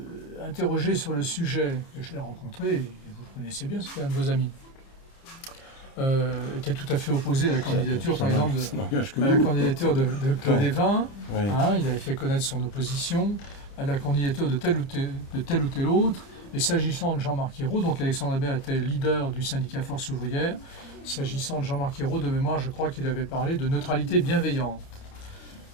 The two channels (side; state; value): right; late; 30 ms